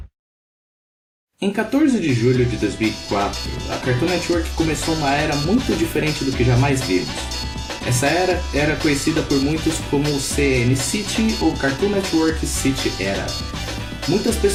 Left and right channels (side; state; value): both; identical; correlation 1.00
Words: Em 14 de julho de 2004, a Cartoon Network começou uma era muito diferente do que jamais vimos. Essa era conhecida por muitos como o CN City ou Cartoon Network City Era. Muitas